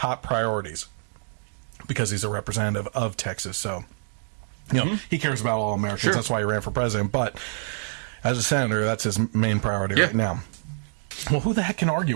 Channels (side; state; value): left; silent; digital silence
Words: priorities. Because he's a representative of Texas, so he cares about all Americans. Sure. That's why he ran for president. But as a senator, that's his main priority right now. Well, who the heck can argue